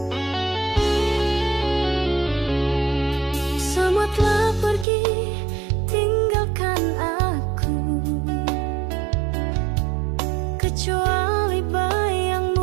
Semua telah pergi, tinggalkan aku, kecuali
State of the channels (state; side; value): drops out; left; at 4.9 s